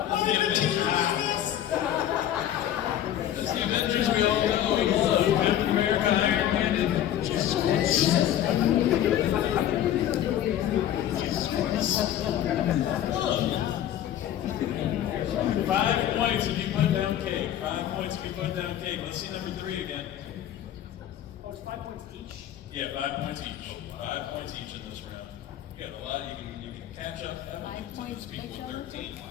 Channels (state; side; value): quieter; right; 11.4 dB